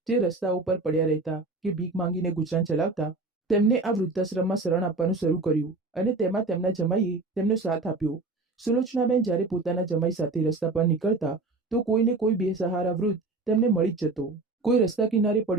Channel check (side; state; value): left; quieter; 3.4 dB